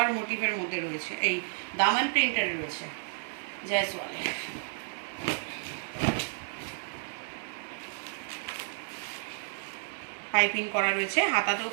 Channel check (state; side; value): silent; left; digital silence